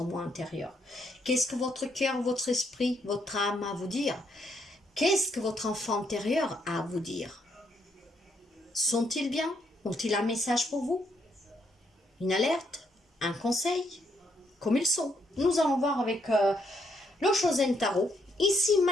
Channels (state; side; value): normal; both; correlation 0.74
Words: moi intérieur. Qu'est-ce que votre cœur, votre esprit, votre âme a à vous dire? Qu'est-ce que votre enfant intérieur a à vous dire? Sont-ils bien? Ont-ils un message pour vous? Une alerte? Un conseil? Comme ils sont. Nous allons voir avec le Chosen Tarot. Ici,